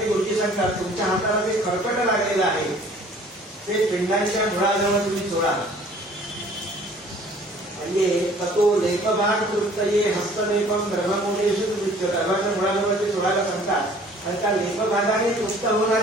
गुरुजी सांगतात तुमच्या हाताला ते खरकट लागलेलं आहे ते पिंडांच्या मुळाजवळ तुम्ही चोळा. म्हणजे तो लेपभाग तृप्तये हस्तलेपम ब्रह्ममूलेषु गर्भाच्या मुळाजवळ ते चोळायला सांगतात आणि त्या लेपभागाने तृप्त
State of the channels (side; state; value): both; normal; correlation 0.53